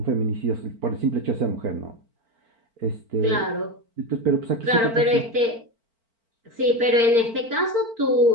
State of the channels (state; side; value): late; left; 4.4 ms